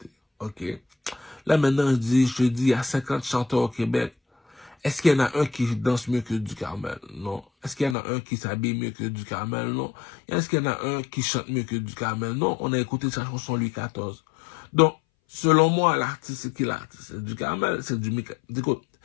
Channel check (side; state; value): right; drops out; at 8.0 s